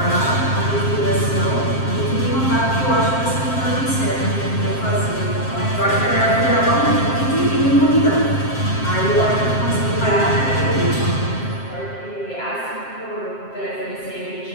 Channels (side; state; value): right; late; 7.6 ms